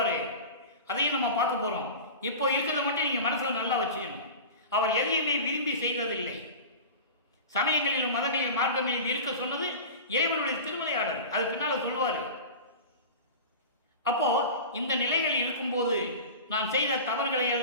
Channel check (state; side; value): inverted; both; correlation -0.32